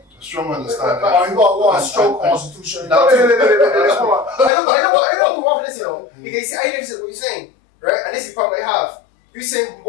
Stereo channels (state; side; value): drops out; right; at 4.5 s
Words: A strong understanding. Or you got a strong constitution? No, I don't move off this, Because see, I understand what you're saying, right? And this is the problem I have. You're saying